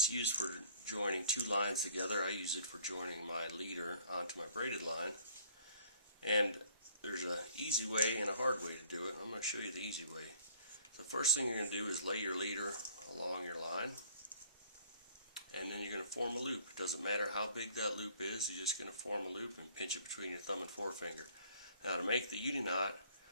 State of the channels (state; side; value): inverted; both; correlation -0.56